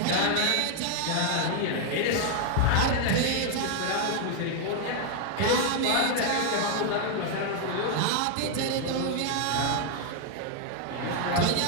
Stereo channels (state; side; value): different; both; correlation 0.00